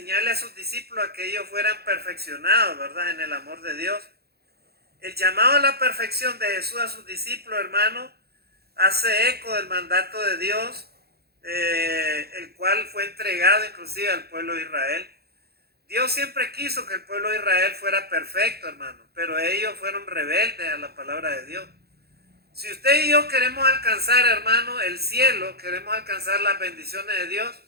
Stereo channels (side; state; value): left; late; 0.46 ms